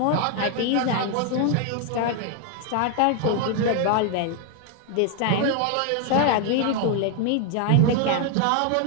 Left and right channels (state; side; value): different; both; correlation 0.00